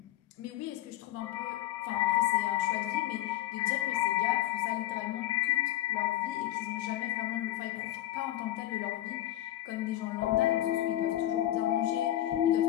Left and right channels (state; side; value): quieter; right; 14.1 dB